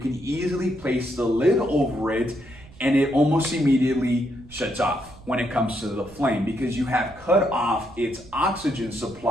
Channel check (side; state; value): right; noise; rumble, 22 dB below the sound